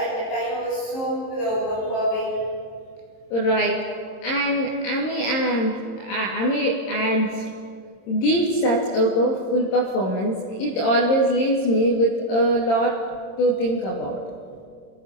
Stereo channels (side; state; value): right; late; 27 ms